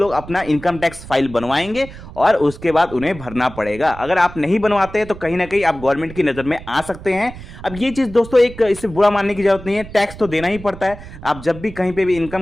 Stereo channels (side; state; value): right; noise; rumble, 15 dB below the sound